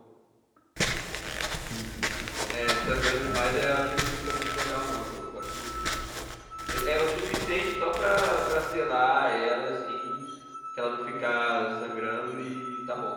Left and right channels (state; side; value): identical; both; correlation 1.00